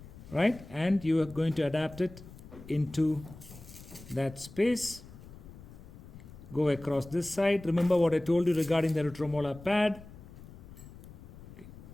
right? And you are going to adapt it into that space. Go across this side. Remember what I told you regarding the retromolar pad. Okay.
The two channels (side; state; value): left; noise; rumble, 17 dB below the sound